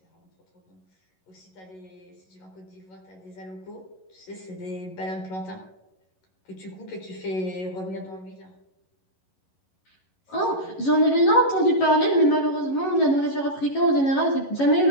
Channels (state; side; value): late; right; 11 ms